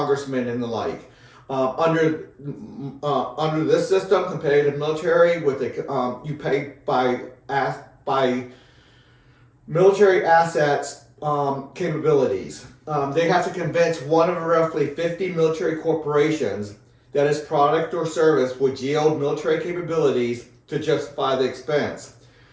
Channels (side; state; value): both; identical; correlation 1.00